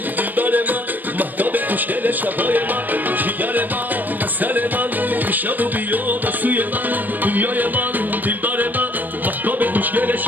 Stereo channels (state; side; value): late; left; 0.087 ms